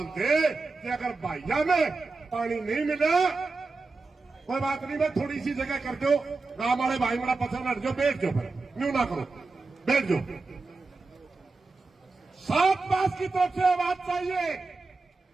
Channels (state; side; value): quieter; left; 3.8 dB